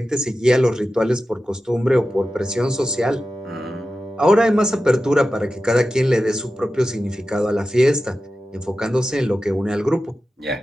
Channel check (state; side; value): normal; both; correlation 0.93